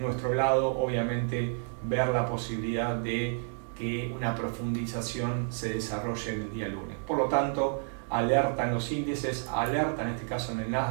lado obviamente ver la posibilidad de que una profundización se desarrolle en el día lunes. Por lo tanto, alerta en los índices, alerta en este caso en el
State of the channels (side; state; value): left; silent; 58 dB below the other